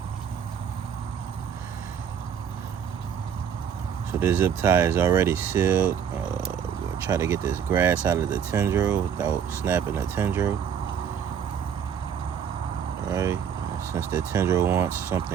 So the zip tie is already sealed. We'll try to get this grass out of the tendril without snapping the tendril. Alright, since the tendril wants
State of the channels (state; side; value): quieter; left; 7.9 dB